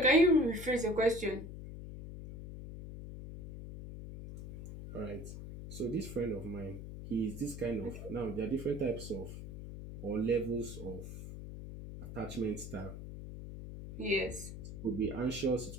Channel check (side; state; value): left; noise; hum, 10 dB below the sound